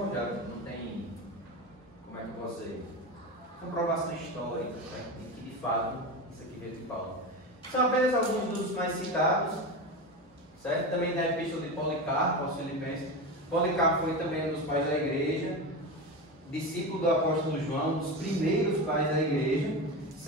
não tem, como é que eu posso dizer, comprovação histórica, certo? E que de fato isso aqui veio de Paulo. São apenas alguns dos mais citados, certo? Também da epístola de Policarpo aos Filipenses. Policarpo foi também um dos pais da igreja, discípulo do apóstolo João, um dos primeiros pais da igreja,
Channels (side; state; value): both; normal; correlation 0.22